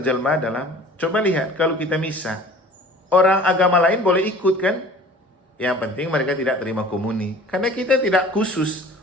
dalam, coba lihat kalau kita misa. Orang agama lain boleh ikut kan? Yang penting mereka tidak terima komuni. Karena kita tidak khusus,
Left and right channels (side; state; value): both; normal; correlation 0.46